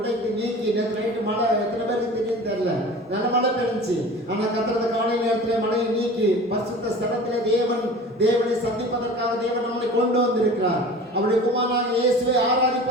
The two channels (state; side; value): normal; both; correlation 0.39